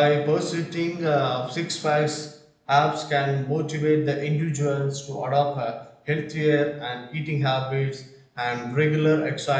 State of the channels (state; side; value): identical; both; correlation 1.00